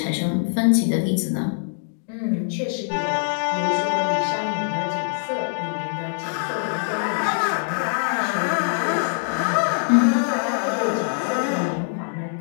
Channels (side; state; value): right; silent; digital silence